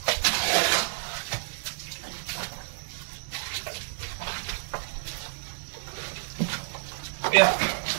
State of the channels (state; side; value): silent; left; 58 dB below the other